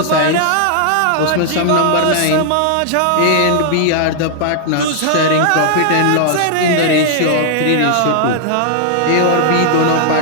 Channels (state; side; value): different; both; correlation -0.01